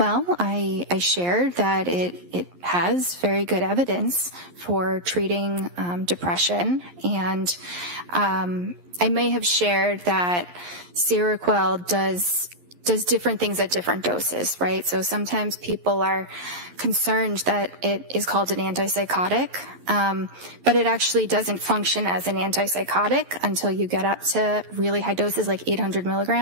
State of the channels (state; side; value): late; left; 11 ms